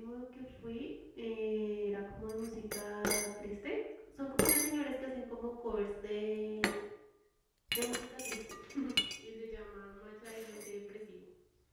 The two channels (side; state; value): both; identical; correlation 1.00